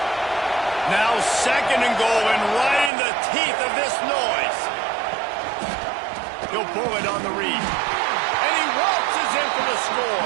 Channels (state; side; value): drops out; left; at 2.9 s